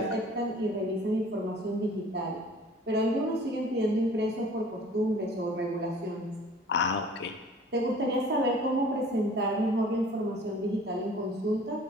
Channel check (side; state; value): both; normal; correlation 0.49